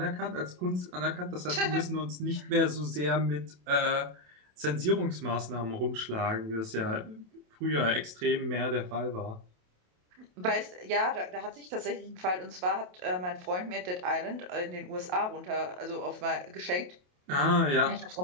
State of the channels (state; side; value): late; left; 28 ms